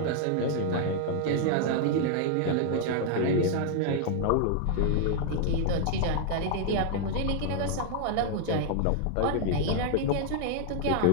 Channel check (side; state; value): both; different; correlation 0.00